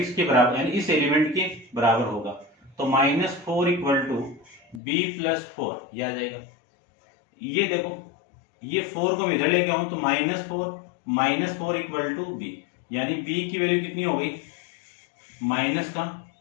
के बराबर, यानी इस एलिमेंट के बराबर होगा, तो -4 इक्वल टू b प्लस 4 ये आ जाएगा। ये देखो ये 4 को मैं इधर लेके आऊं तो -4 इक्वल टू b, यानी b की वैल्यू कितनी हो गई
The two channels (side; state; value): right; drops out; at 4.8 s